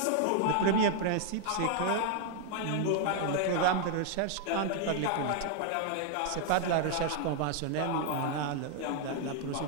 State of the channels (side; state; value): both; different; correlation 0.00